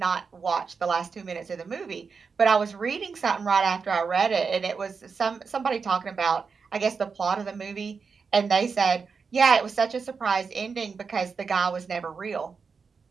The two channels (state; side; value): quieter; left; 5.3 dB